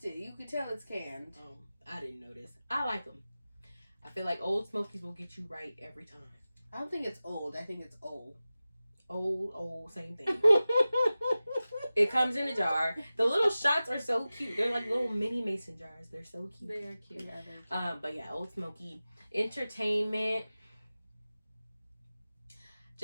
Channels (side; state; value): both; inverted; correlation -0.96